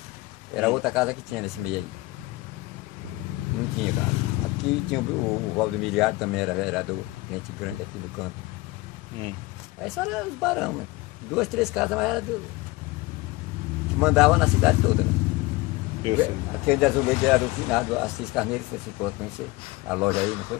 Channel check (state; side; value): quieter; right; 21.3 dB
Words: era outra casa que tinha nesse meio aí. Não tinha casa. Aqui tinha o Valdemiriado, também era vereador, gente grande aqui do canto. Aí só eram os barão, né? 2, 3 casas, mas era que mandava na cidade toda, né? Eu sei. Aquele de azulejo era do finado Assis Carneiro, você ficou a conhecer a loja aí, não